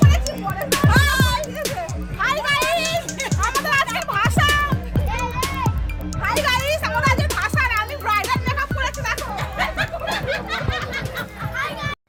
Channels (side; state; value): both; identical; correlation 1.00